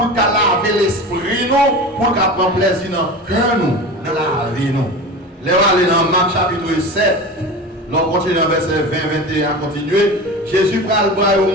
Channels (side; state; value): both; normal; correlation 0.31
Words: qu'elle lave l'esprit, nous, pour qu'elle prenne plaisir dans le cœur, nous, dans la vie. Nous. Les aller dans Marc chapitre 7, l'on continue dans verset 20-21 à continuer. Jésus prend le bras au